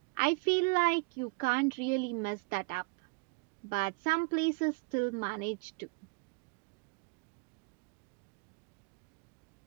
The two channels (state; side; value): quieter; left; 29.9 dB